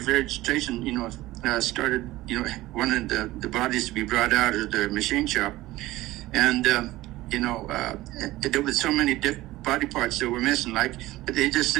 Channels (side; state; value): left; quieter; 17.5 dB